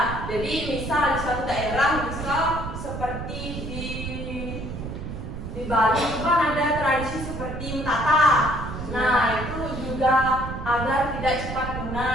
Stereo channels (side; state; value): right; noise; rumble, 7 dB below the sound